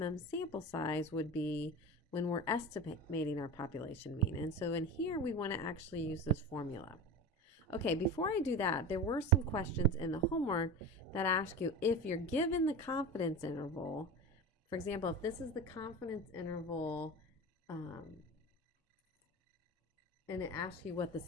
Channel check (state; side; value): normal; both; correlation 0.29